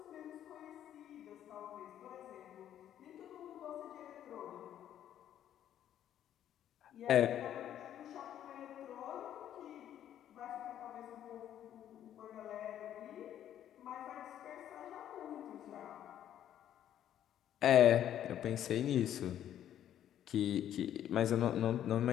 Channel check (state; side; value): quieter; right; 10.9 dB